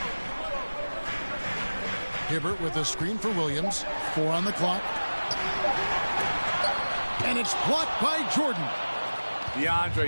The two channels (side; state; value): both; inverted; correlation -1.00